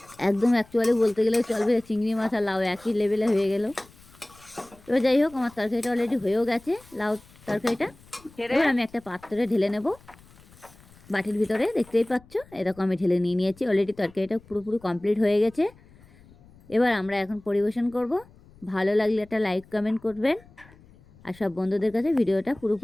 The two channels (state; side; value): noise; left; rumble, 25 dB below the sound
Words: একদম অ্যাকচুয়ালি বলতে গেলেও চলবে, চিংড়ি মাছ আর লাউ একই লেভেলে হয়ে গেল। এবার যাই হোক আমার তরকারিটা অলরেডি হয়েও গেছে, লাউ তরকারিটা। এবার আমি একটা পাত্রে ঢেলে নেব বাটির ভিতরে, দেখতেই পাচ্ছ এরকম আমি ঢেলে নিয়ে নিয়েছি। অলরেডি তরকারিটা পুরোপুরি কমপ্লিট হয়ে গেছে। এবার আমরা এখন পরিবেশন করব। ভালো লাগলে একটা লাইক কমেন্ট করবেন, আর সব বন্ধুদের কাছে ভিডিওটা